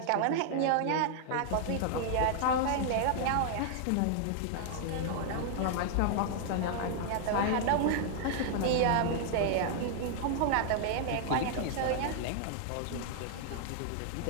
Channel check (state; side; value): different; both; correlation 0.00